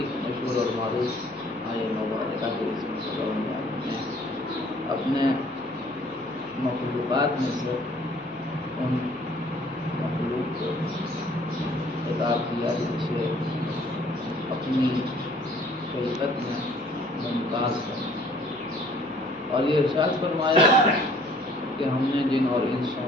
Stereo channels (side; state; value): left; noise; hum, 28 dB below the sound